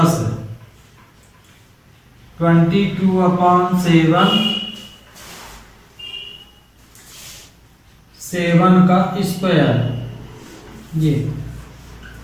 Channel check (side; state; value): both; identical; correlation 1.00